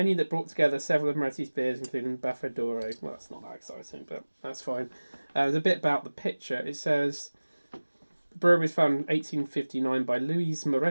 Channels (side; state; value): both; inverted; correlation -1.00